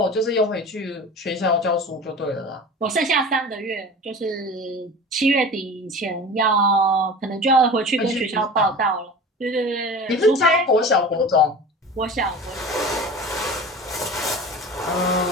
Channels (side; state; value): both; normal; correlation 0.36